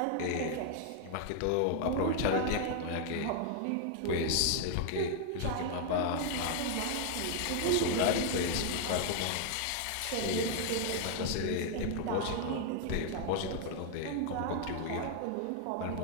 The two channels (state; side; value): different; both; correlation 0.00